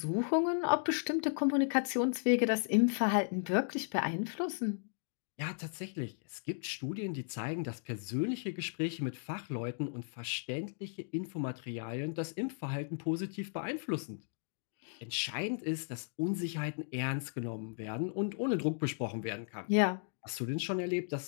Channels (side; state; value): right; silent; digital silence